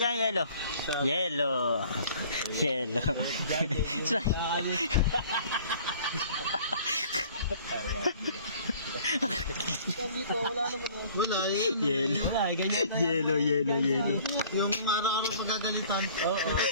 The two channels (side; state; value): both; inverted; correlation -0.52